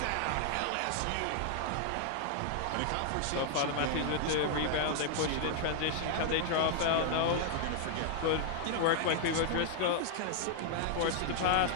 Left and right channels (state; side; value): different; both; correlation 0.00